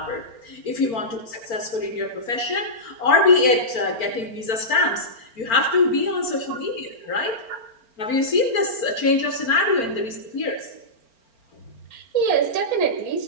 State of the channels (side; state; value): right; late; 4.4 ms